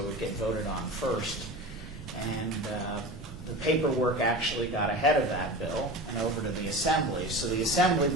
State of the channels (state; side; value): normal; both; correlation 0.31